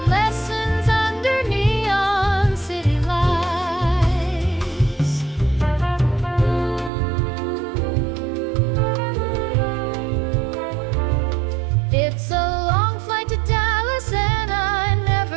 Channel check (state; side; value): drops out; left; at 6.9 s